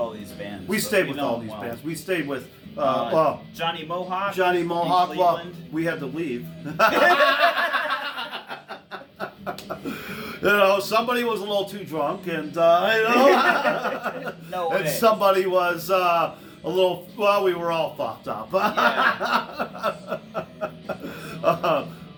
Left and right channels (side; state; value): both; identical; correlation 1.00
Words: these bands. We stayed with all these bands. We stayed with Johnny Mohawk. Well, we had to leave. Somebody was a little too drunk, and No way. And somebody was a little. Well, we were all fucked up.